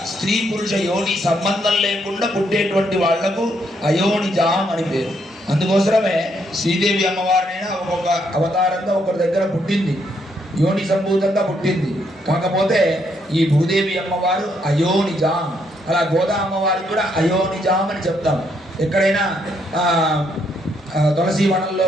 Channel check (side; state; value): both; normal; correlation 0.74